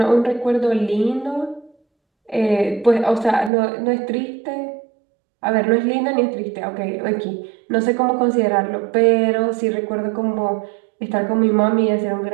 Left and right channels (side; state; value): left; drops out; at 3.5 s